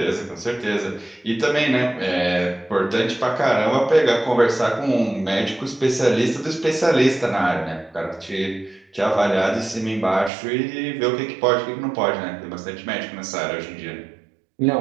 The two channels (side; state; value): left; drops out; at 10.3 s